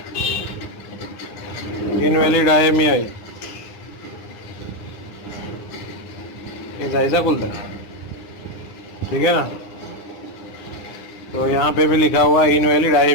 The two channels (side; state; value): right; late; 9.8 ms